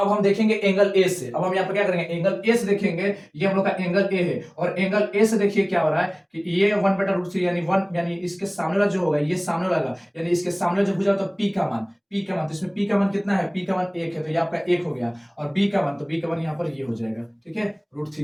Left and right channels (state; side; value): identical; both; correlation 1.00